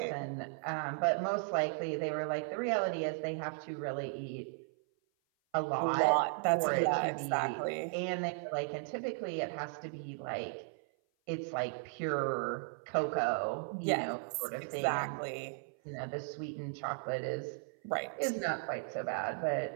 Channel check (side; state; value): left; silent; 54 dB below the other